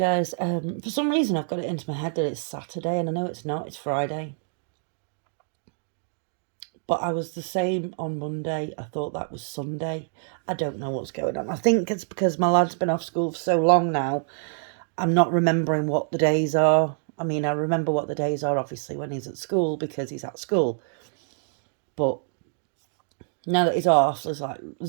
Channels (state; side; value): silent; left; digital silence